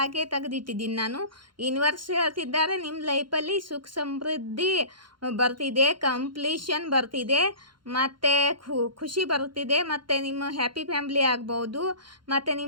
ತೆಗೆದಿಟ್ಟಿದ್ದೀನಿ ನಾನು. ಯೂನಿವರ್ಸ್ ಹೇಳ್ತಿದ್ದಾರೆ ನಿಮ್ಮ ಲೈಫಲ್ಲಿ ಸುಖ ಸಮೃದ್ಧಿ ಬರ್ತಿದೆ, ಕಂಪ್ಲೀಷನ್ ಬರ್ತಿದೆ, ಮತ್ತು ಖುಷಿ ಬರುತ್ತಿದೆ, ಮತ್ತು ನಿಮ್ಮ ಹ್ಯಾಪಿ ಫ್ಯಾಮ್ಲಿ ಆಗ್ಬೋದು, ಮತ್ತು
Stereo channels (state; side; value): late; left; 0.72 ms